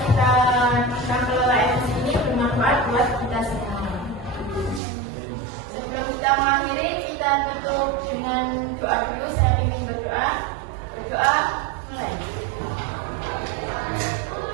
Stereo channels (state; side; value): drops out; left; at 4.8 s